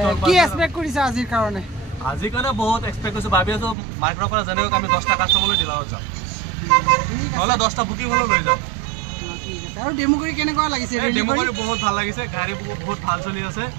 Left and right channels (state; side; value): drops out; left; at 3.8 s